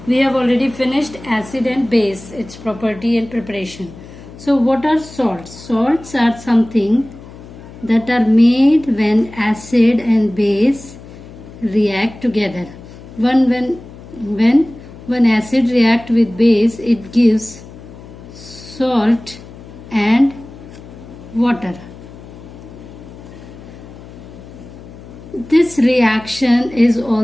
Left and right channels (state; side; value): noise; left; hum, 17 dB below the sound